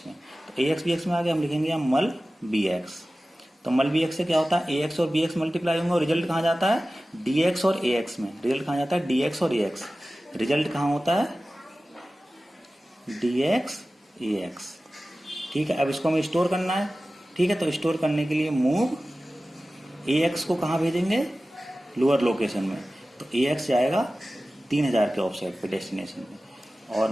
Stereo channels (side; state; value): both; normal; correlation 0.96